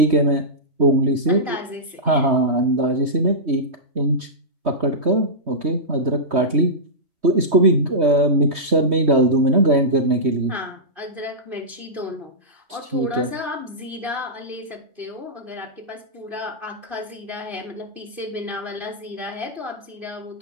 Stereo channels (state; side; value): late; left; 3.2 ms